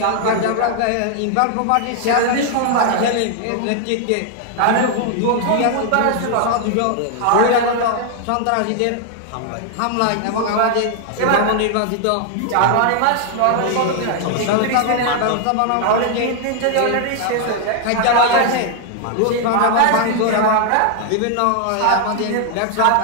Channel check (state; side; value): different; both; correlation 0.00